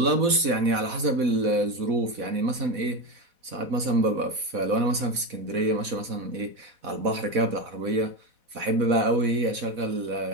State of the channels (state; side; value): late; left; 4.1 ms